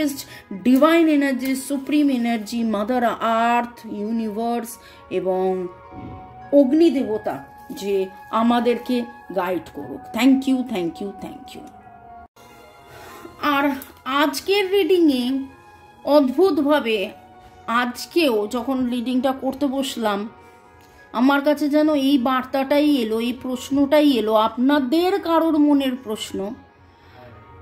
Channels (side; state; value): both; identical; correlation 1.00